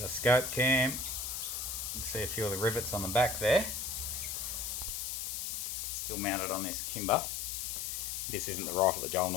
the SkopeCam. You can see a few of the rivets on the back there. Still mounted on this kimber. This isn't the rifle that Joel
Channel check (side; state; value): left; noise; hiss, 3 dB below the sound